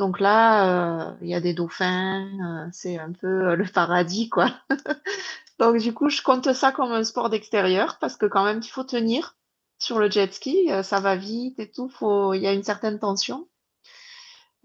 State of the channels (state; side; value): identical; both; correlation 1.00